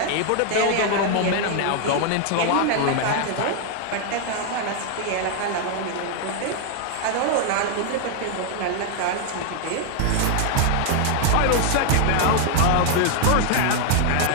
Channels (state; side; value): different; both; correlation 0.00